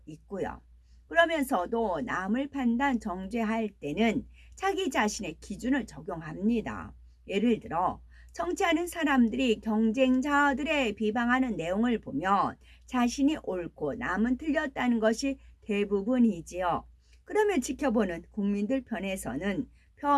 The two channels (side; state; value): both; identical; correlation 1.00